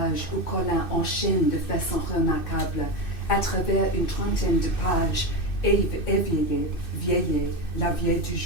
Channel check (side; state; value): right; late; 2.6 ms